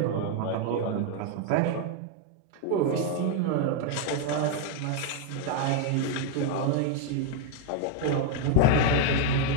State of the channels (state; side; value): different; both; correlation 0.00